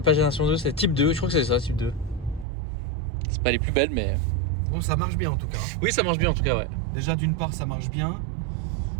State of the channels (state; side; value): drops out; left; at 2.5 s